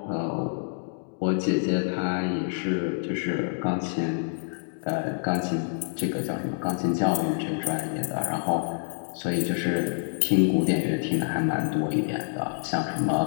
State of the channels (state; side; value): silent; right; digital silence